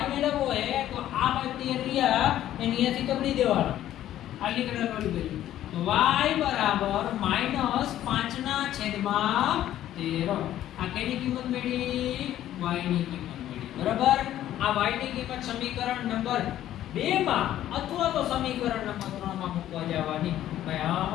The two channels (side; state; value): right; quieter; 12.5 dB